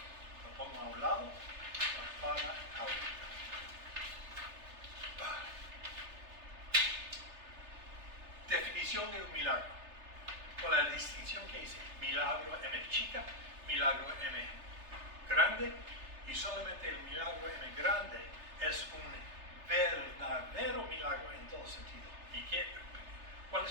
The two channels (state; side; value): late; left; 3.3 ms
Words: lo pongo a un lado para ahorita. Definición de un milagro, con la distinción que hice: milagro M chica, milagro M grande, y solamente el milagro M grande es un verdadero milagro en todo sentido. ¿Y cuál